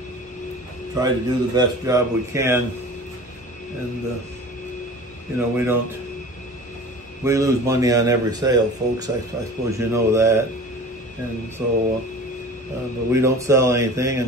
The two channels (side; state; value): both; normal; correlation 0.40